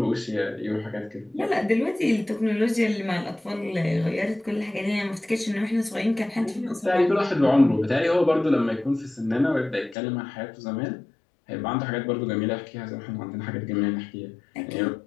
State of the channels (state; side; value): drops out; right; at 10.0 s